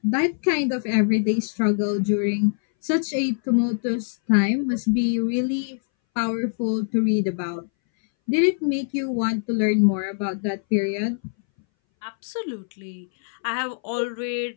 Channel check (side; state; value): right; silent; 61 dB below the other